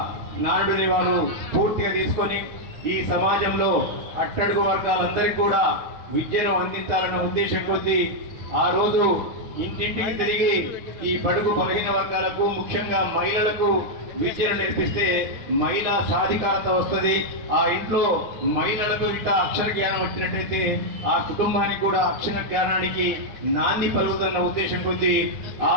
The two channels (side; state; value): left; late; 9.7 ms